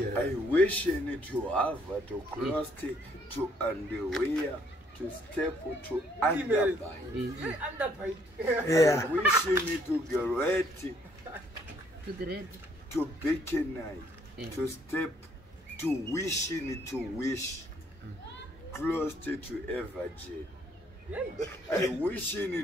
I wish to have to cross to underwear to step to underbite. yeah I wish to get To the red. to bikini to step to wishing to wish close to a virgin. I wishing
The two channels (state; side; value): normal; both; correlation 0.66